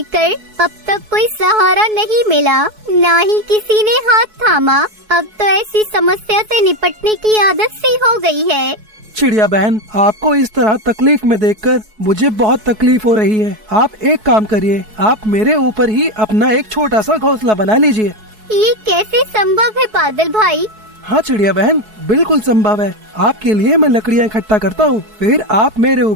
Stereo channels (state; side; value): late; left; 4.7 ms